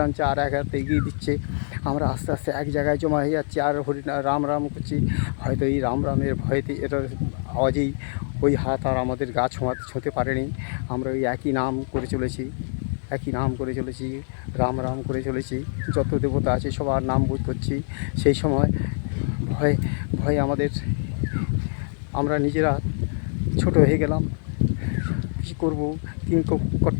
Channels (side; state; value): right; silent; 59 dB below the other